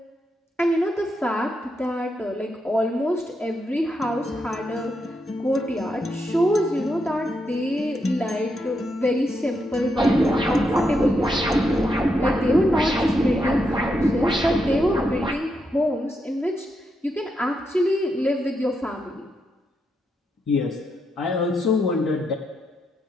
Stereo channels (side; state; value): both; normal; correlation 0.82